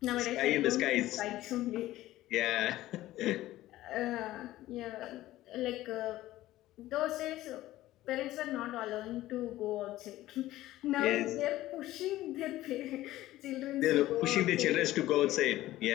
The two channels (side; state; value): right; quieter; 15.6 dB